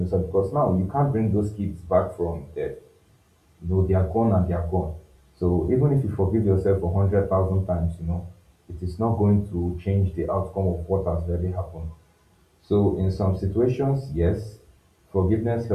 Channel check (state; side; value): identical; both; correlation 1.00